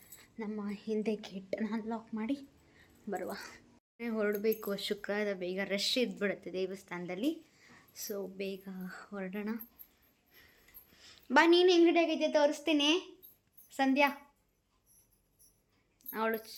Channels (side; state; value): both; identical; correlation 1.00